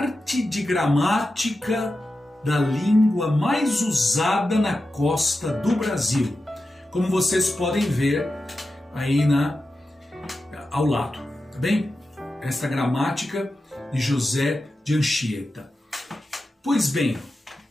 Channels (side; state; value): both; normal; correlation 0.91